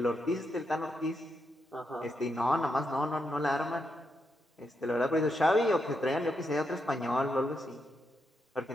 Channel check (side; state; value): both; normal; correlation 0.83